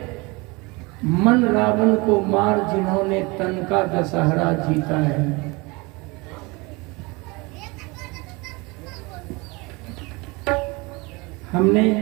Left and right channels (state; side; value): quieter; left; 25.8 dB